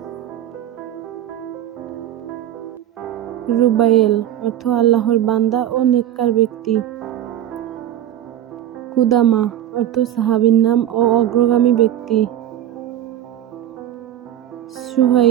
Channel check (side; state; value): left; quieter; 11.7 dB